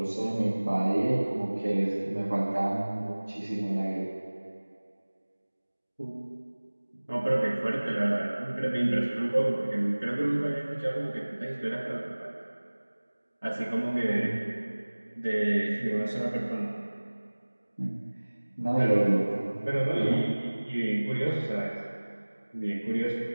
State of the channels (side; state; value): both; inverted; correlation -1.00